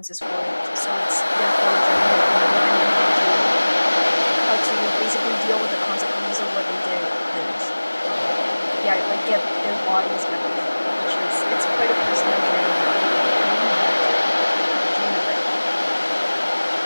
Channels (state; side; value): inverted; both; correlation -1.00